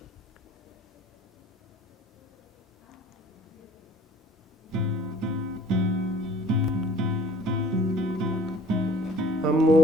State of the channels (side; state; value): both; normal; correlation 0.51